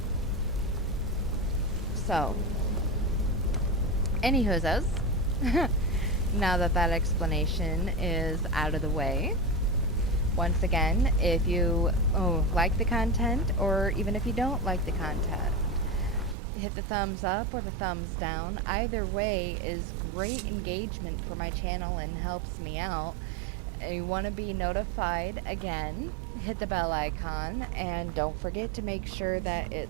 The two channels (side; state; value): left; drops out; at 16.4 s